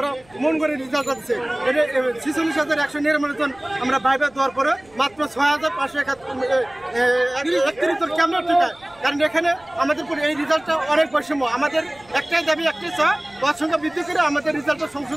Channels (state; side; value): noise; right; rumble, 30 dB below the sound